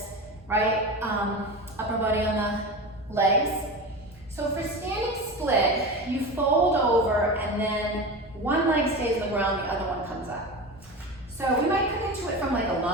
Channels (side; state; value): both; normal; correlation 0.27